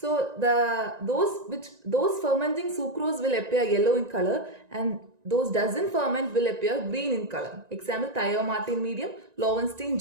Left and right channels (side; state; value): left; late; 1.9 ms